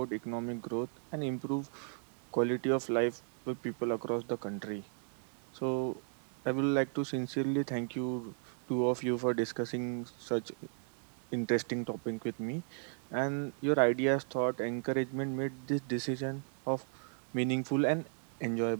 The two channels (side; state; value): left; silent; 54 dB below the other